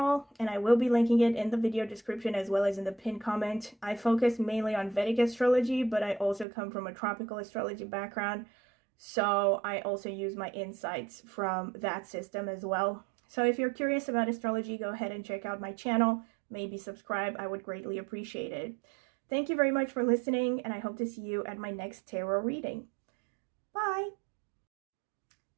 and I will be linking it in the video description as well as in the pinned comment. I focus mainly on Vedic astrology, but I also come from a tropical astrology background, so I also use my insights from that system as well. So if you're curious about astrology, go ahead and check out my channel. Maybe subscribe. I would greatly appreciate it. Thank you very much for listening, and I hope to see you at my next tarot reading. Bye!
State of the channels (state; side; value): drops out; left; at 6.5 s